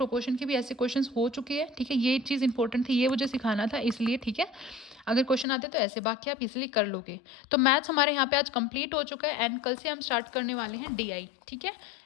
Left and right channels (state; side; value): drops out; right; at 5.5 s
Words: के भी ऐसे क्वेश्चंस हो चुके हैं, ठीक है। ये चीज़ इंपॉर्टेंट थी, ये मुझे सिखाना था इसलिए, ठीक है। अगर क्वेश्चन आते तो ऐसे, बाकी आप इजीली कर लोगे। तो मैथ्स हमारे यहाँ पे आज कंप्लीट हो चुका है एंड कल से हम स्टार्ट करने वाले हैं DI, ठीक है।